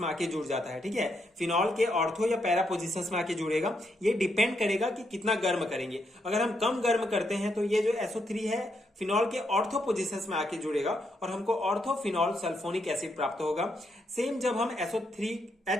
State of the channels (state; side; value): normal; both; correlation 0.79